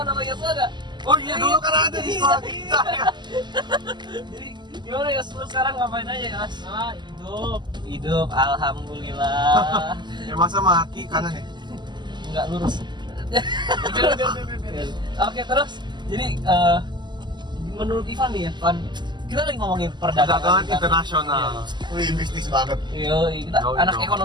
sama Yosua gak? Oh iya dulu kan ada di sekolah kita ya. Jadi gimana Yos? Lu sekarang ngapain aja Yos? Hidup. Alhamdulillah. Ya masa mati kanan ya? Enggak lurus. Oke, terus jadi menurut Ivan nih ya, Van, kita lagi ngomongin Perdagangan internasional. Wih, bisnis banget. Kita Yoi anak dong.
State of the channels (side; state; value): left; late; 0.21 ms